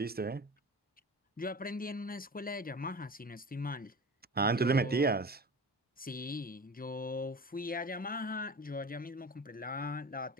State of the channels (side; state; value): both; normal; correlation 0.34